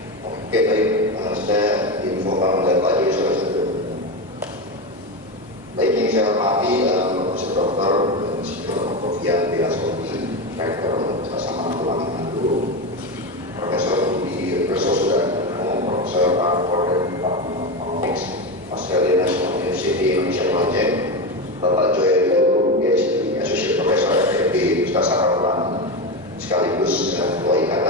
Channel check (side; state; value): both; normal; correlation 0.16